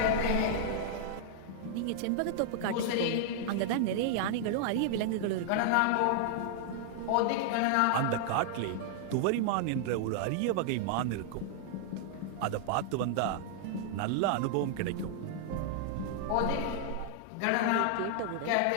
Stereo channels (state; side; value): different; both; correlation -0.01